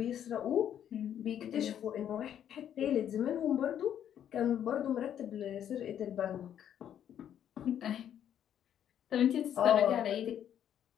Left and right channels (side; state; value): right; quieter; 9.8 dB